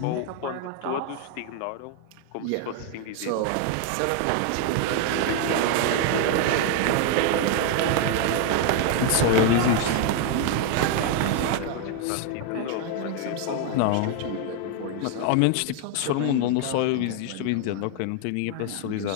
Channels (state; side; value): different; both; correlation 0.01